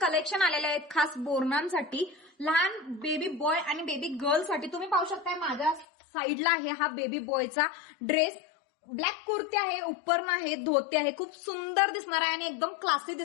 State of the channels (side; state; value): right; drops out; at 5.9 s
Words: कलेक्शन आलेले आहेत खास बोरणांसाठी, लहान बेबी बॉय आणि बेबी गर्ल साठी. तुम्ही पाहू शकताय माझ्या साईडला आहे हा बेबी बॉयचा ड्रेस. ब्लॅक कुर्ती आहे, उपरण आहे, धोती आहे. खूप सुंदर दिसणार आहे आणि एकदम क्लासी